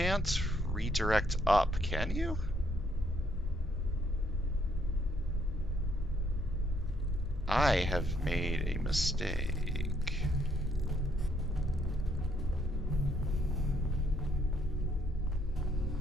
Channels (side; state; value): both; normal; correlation 0.70